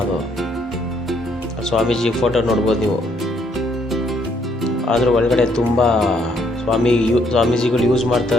ಅದು. ಸ್ವಾಮೀಜಿ ಫೋಟೋ ನೋಡ್ಬೋದು ನೀವು. ಆದರೂ ಒಳಗಡೆ ತುಂಬ ಸ್ವಾಮೀಜಿಗಳು ಯೂಸ್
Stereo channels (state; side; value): normal; both; correlation 0.69